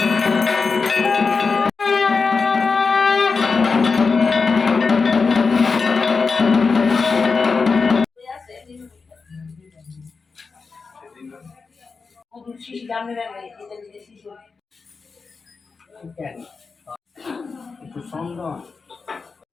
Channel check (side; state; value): right; quieter; 4.7 dB